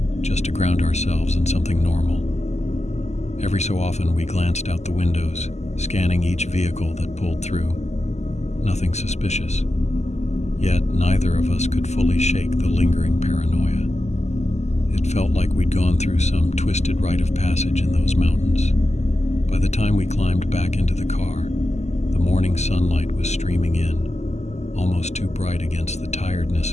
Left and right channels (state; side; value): late; right; 0.33 ms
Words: just to ground ourselves in something normal. Every so often we glanced out the windows, scanning each vehicle that pulled through. Nothing suspicious. Yet neither of us could fully shake the lingering paranoia. It felt like we'd gone through some twisted rite of passage in those mountains. By the time we climbed back into the car, the morning sunlight was streaming in, almost too bright against the tiredness